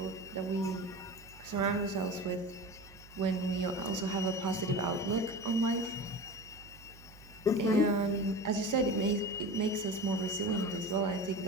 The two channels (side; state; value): right; noise; hum, 21 dB below the sound